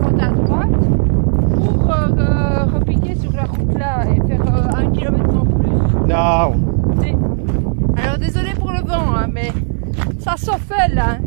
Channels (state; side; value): silent; left; digital silence